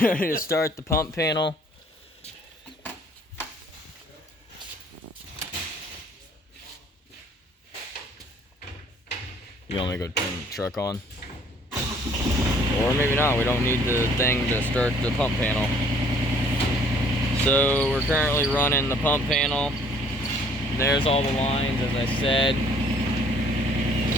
ready to start the pump panel. You want me to go turn the truck on? Or maybe not, we don't need the thing to start the pump panel. So we're currently running the pump panel. There's all the lines, as I said.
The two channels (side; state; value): both; normal; correlation 0.59